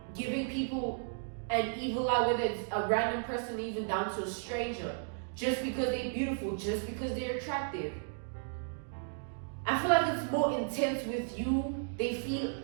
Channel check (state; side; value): silent; left; digital silence